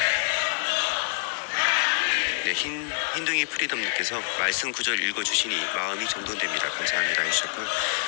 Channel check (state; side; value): silent; right; 61 dB below the other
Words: 네, 흰둥이 프리덤님께서 말씀 구절 읽어주시니 마음이 정돈됩니다. 감사합니다 해주셨고요.